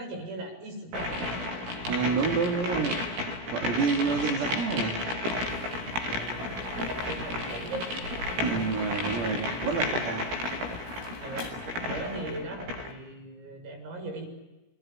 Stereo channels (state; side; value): late; left; 17 ms